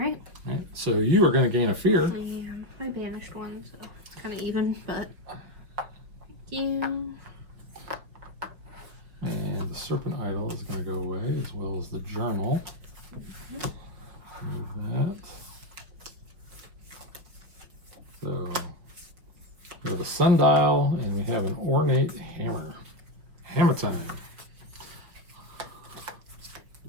Right. So you are going to gain a fear. I banished one, so it's kind of even, but thank you. And the serpent idol is going to go away, as well as the journal. Move that. So we have a sundial, and we have an ornate hammer. Hammer time.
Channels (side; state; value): left; late; 5.3 ms